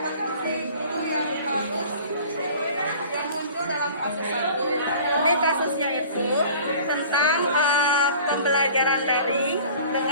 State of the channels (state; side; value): inverted; both; correlation -0.45